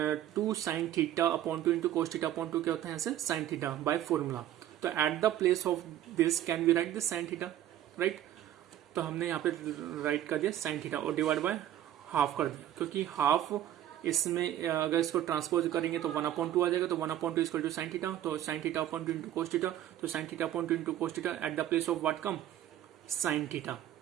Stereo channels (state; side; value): quieter; left; 12.1 dB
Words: 2 साइन θ/2 इंटू कोस θ/2 क्या होता है? ऐसे साइन थीटा बाय फॉर्मूला. तो at the place of this can we write this sine theta, right? तो हमने यहाँ पे राइट कर दिया साइन थीटा और डिवाइड बाय हाफ कर दिया, क्योंकि हाफ इसमें अगर इसको ट्रांसपोज करेंगे तो 1/2 आ जाएगा. तो 1/2 इक्वल टू साइन थीटा. तो साइन θ/2 इंटू कोस थीटा. तो sine θ/2 into cos theta at the place of what come? Sine theta.